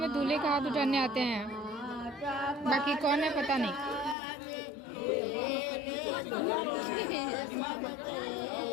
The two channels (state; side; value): drops out; right; at 4.2 s